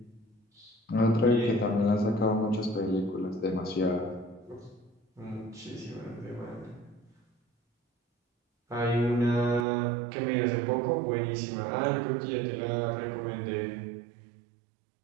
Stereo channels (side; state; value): left; drops out; at 9.7 s